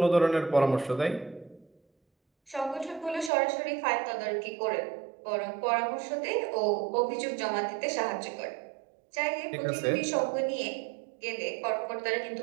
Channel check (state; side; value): drops out; left; at 3.3 s